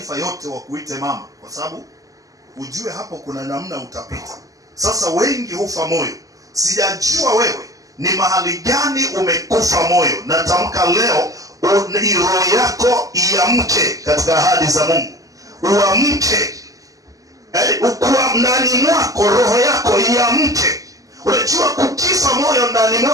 yote wakuite mama, kwa sababu ujue hapo kuna namna utapita. Sasa wengi hufa moyo. Sijajua wewe ni mahali gani umekufa moyo. Natamka leo roho yako iamke katika ahadi za Mungu. Uamke. Ukua ndani mwako roho yako iamke. Unajua kukifa moyo ndani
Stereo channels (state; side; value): late; left; 0.17 ms